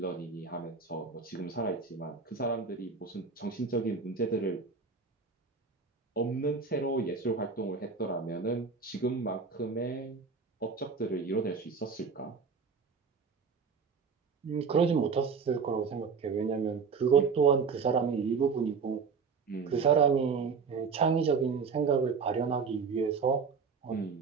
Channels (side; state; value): left; quieter; 5.3 dB